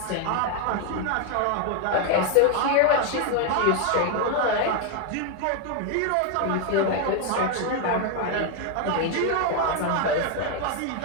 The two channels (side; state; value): both; different; correlation 0.01